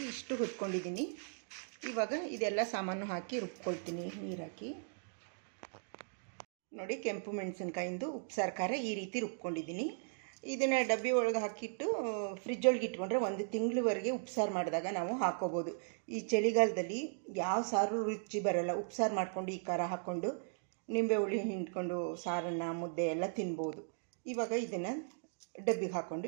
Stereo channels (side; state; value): left; silent; digital silence